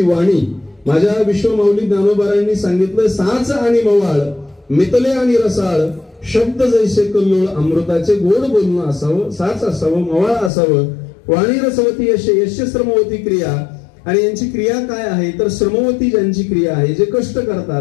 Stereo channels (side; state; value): right; drops out; at 10.5 s